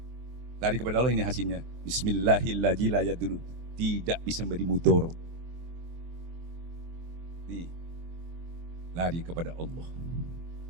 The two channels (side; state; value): left; late; 23 ms